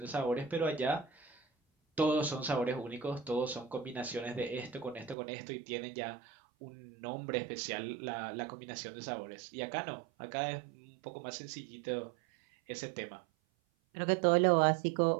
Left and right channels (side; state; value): left; drops out; at 5.2 s